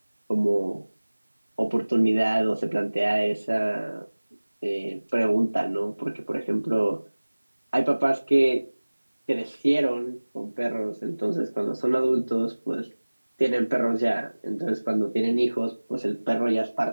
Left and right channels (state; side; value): inverted; both; correlation -1.00